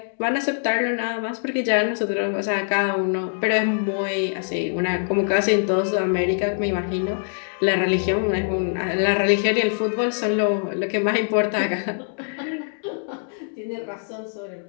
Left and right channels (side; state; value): right; silent; digital silence